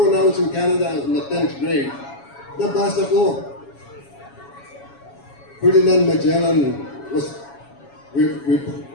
I was in Canada, I was in the 10th grade, nabasa ko. Ferdinand Magellan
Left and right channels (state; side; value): late; right; 7.2 ms